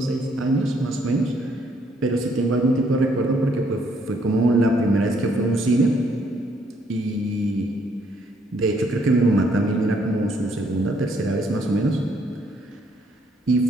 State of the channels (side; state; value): both; normal; correlation 0.68